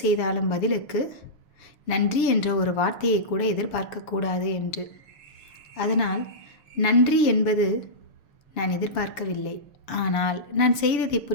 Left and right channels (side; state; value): right; late; 7.0 ms